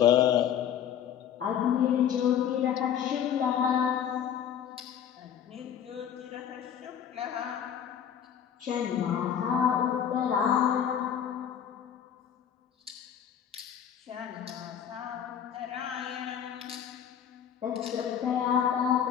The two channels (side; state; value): right; quieter; 9.1 dB